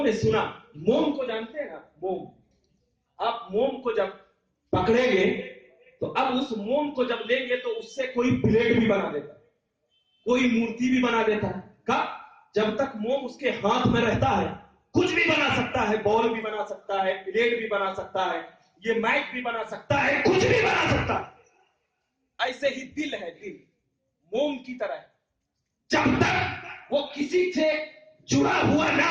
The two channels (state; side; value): identical; both; correlation 1.00